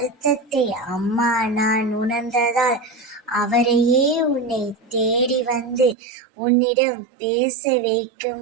அம்மா நான் உணர்ந்ததால் அவரையே உன்னை தேடி வந்து உன்னிடம் பேச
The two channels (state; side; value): drops out; left; at 6.0 s